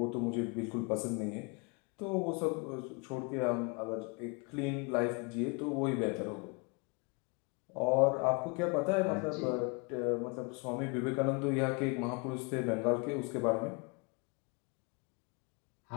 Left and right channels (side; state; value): right; quieter; 31.7 dB